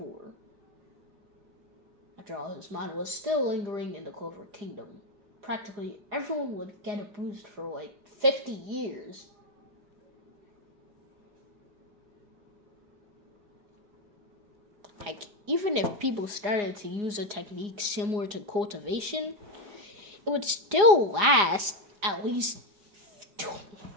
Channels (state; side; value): late; left; 5.0 ms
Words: After all, his mana was still lingering in the Clover Kingdom. Practically everyone would get a boost for like 50 years. Like, even if people started to use a technique similar to cultivation, it would still last at least,